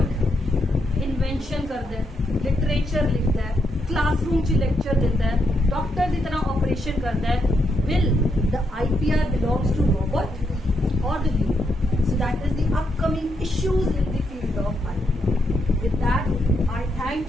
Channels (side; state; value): both; normal; correlation 0.79